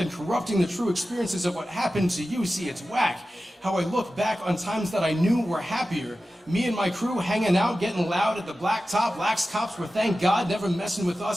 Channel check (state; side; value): normal; both; correlation 0.94